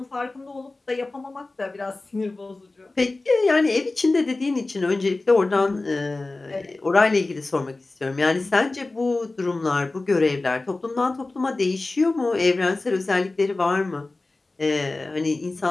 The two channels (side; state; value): right; quieter; 3.2 dB